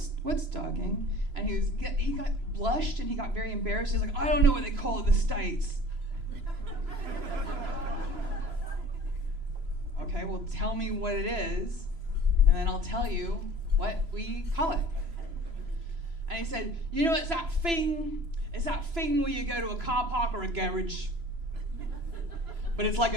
dogging? And he got blushed and he got very embarrassed. He's like, I don't know what they call it in the States. Okay, well, tell me what it is, and then I'll tell you what we call it. And he said, you know, it's that thing where you go to a car park or a garage, but it's like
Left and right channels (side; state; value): left; late; 3.0 ms